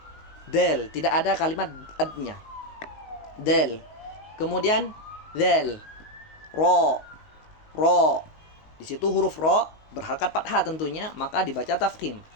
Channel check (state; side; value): late; right; 19 ms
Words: Dal, tidak ada kalimat ad-nya. Dal. Kemudian zal, ro. Di situ huruf ro berharkat fathah tentunya, maka dibaca tafkhim